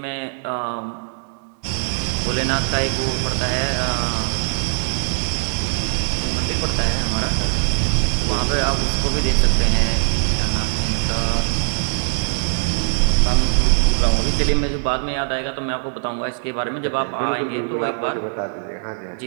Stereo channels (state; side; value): silent; left; digital silence